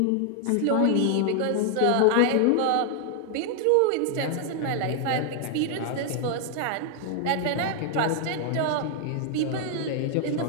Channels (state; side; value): different; both; correlation 0.00